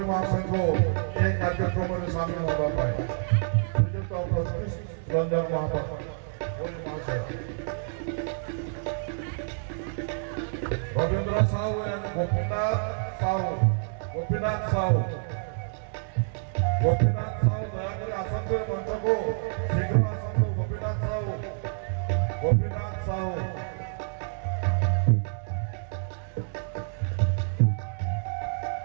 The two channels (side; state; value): left; silent; 59 dB below the other